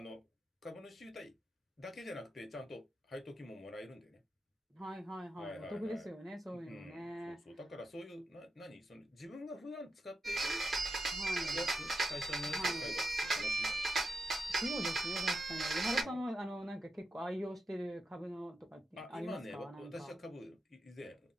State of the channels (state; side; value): normal; both; correlation 0.87